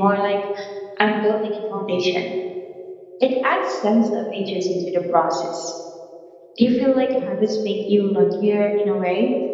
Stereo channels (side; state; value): both; identical; correlation 1.00